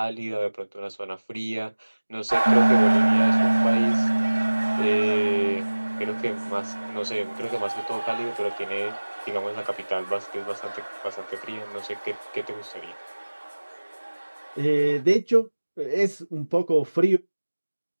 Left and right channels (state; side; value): inverted; both; correlation -1.00